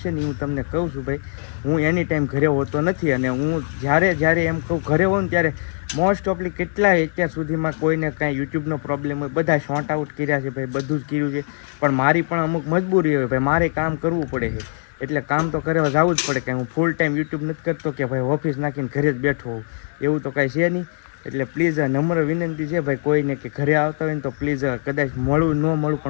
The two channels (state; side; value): silent; right; 64 dB below the other